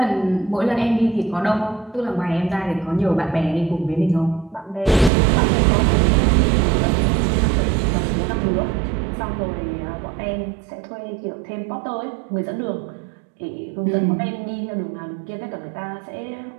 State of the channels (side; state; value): left; drops out; at 5.1 s